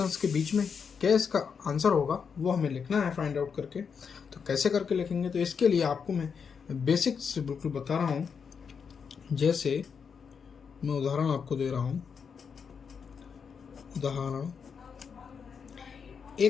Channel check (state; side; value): quieter; right; 6.3 dB